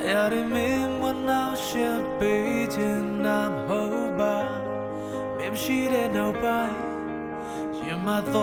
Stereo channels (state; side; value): identical; both; correlation 1.00